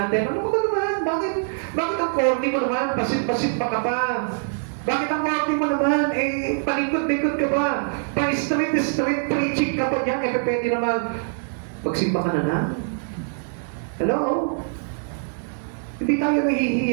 Ano ba naman? Bakit ang corny mo naman? Pasit-pasit pa ka pa. Bakit ang corny mo naman? Eh, palikot-likot ka ba? Pa-street preaching ka pa dyan. Eh, pwede naman. Pagsimba ka na. Hello? Hindi tayo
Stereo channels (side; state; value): left; silent; 63 dB below the other